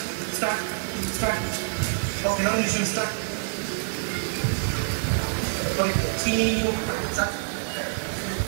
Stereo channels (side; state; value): left; silent; 61 dB below the other